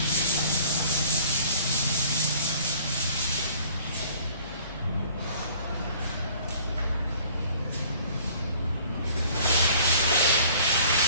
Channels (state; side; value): inverted; both; correlation -0.52